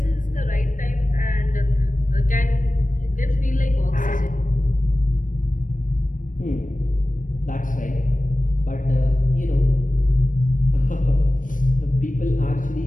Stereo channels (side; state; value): right; late; 0.38 ms